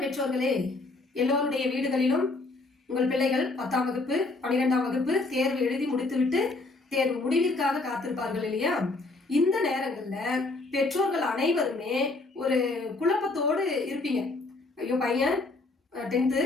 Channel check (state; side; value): quieter; right; 3.3 dB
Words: பெற்றோர்களே, எல்லோருடைய வீடுகளிலும் உங்கள் பிள்ளைகள் 10ஆம் வகுப்பு 12ஆம் வகுப்பு தேர்வு எழுதி முடித்துவிட்டு தேர்வு முடிவிற்காக காத்திருப்பார்கள் இல்லையா? இந்த நேரங்களில் பெற்றோர்கள் அனைவருமே ஒரு குழப்பத்தோடு இருப்பீங்க. ஐயோ, பையன் 10th